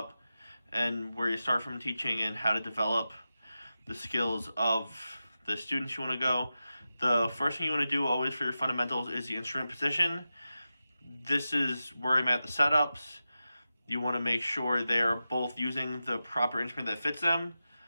and where you start from teaching and how to develop the skills of the students you want to go. The first thing you want to do always for your fundamentals is the instrument position. This is where I'm at the setups. You want to make sure they're both using the proper instrument that fits them,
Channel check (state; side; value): inverted; both; correlation -0.92